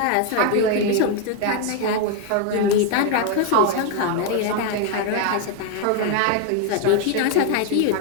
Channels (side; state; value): both; different; correlation 0.01